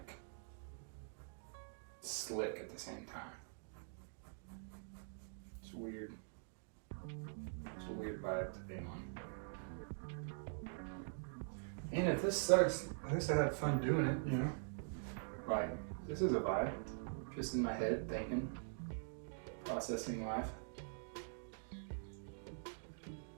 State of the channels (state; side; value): silent; left; digital silence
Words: slick at the same time. It's weird. It's a weird vibe to be on. And if this sucks, at least I had fun doing it, you know? Like, this is a vibe. Just in my head, thinking, processing life.